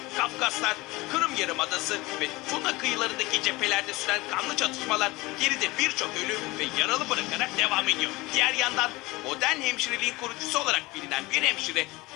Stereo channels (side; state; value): right; quieter; 21.7 dB